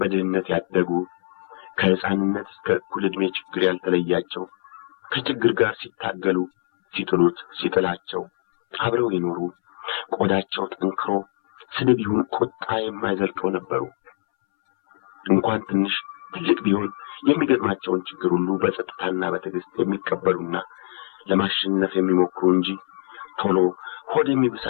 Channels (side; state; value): right; silent; 63 dB below the other